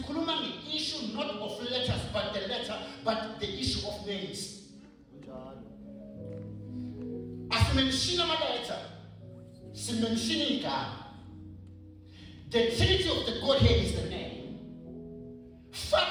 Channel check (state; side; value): identical; both; correlation 1.00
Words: nge-issue not of letters but the issue of names. Asimenshina ama-letter, simenshina igama. The Trinity of the Godhead is the name.